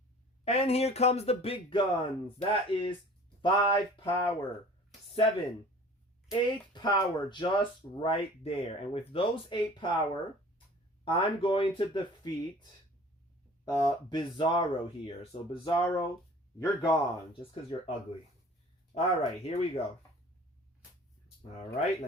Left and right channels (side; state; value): both; normal; correlation 0.46